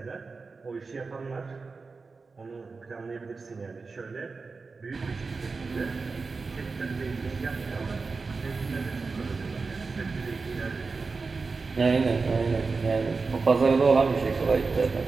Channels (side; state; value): left; quieter; 4.3 dB